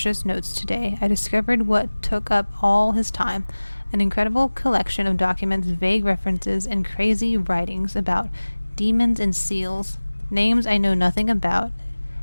notes today. I discovered what took up all his time. An incredible collection of documents, vague references, and crazy writings about demons and seals, names I know nothing about,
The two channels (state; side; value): inverted; both; correlation -1.00